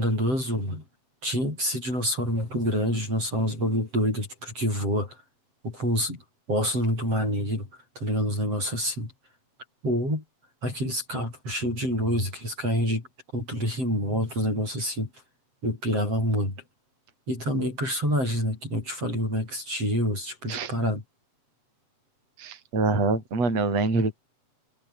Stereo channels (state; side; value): late; left; 7.7 ms